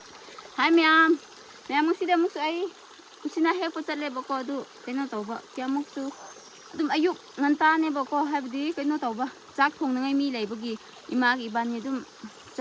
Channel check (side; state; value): both; identical; correlation 1.00